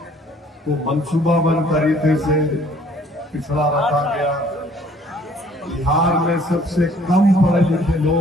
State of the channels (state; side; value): normal; both; correlation 0.58